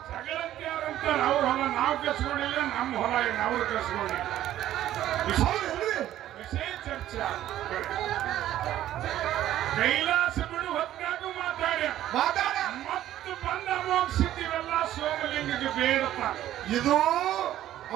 ಜಗಳಂತೆ ಯಾರಂತಾರೆ ಅವ್ರ ಹೊಲ ನಾವು ಕಸ್ಕೊಂಡಿಲ್ಲ, ನಮ್ಮ ಹೊಲ ಅವ್ರು ಕಸ್ಕೊಂಡಿಲ್ಲ. ವಿಷಯ ಚರ್ಚೆ. ಕೈಲಾಸ ಬಿಡು ಹೊತ್ತಾಗೂ ಮಾತಾಡ ಮತ್ತು ಬಂದ ಅಮೋಘಸಿದ್ದೀವೆಲ್ಲ ಸೋಮಲಿಂಗಕ್ಕೆ ಬೇಡಪ್ಪ. ಇದು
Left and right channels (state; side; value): quieter; left; 12.8 dB